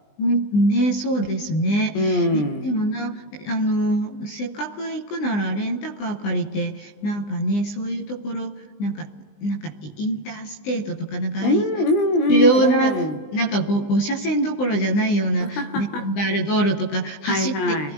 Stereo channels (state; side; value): late; right; 20 ms